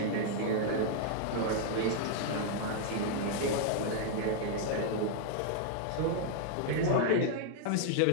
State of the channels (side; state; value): both; different; correlation -0.01